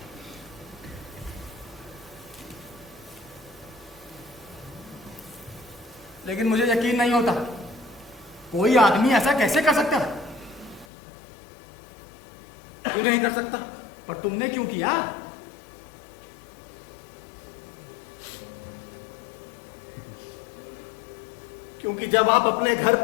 लेकिन मुझे यकीन नहीं होता, कोई आदमी ऐसा कैसे कर सकता है? तू नहीं कर सकता, पर तुमने क्यों किया? क्योंकि जब आप अपने घर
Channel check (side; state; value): right; drops out; at 10.9 s